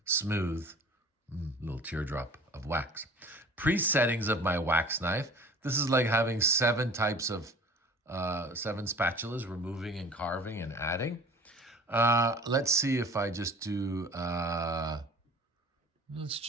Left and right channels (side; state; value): both; normal; correlation 0.45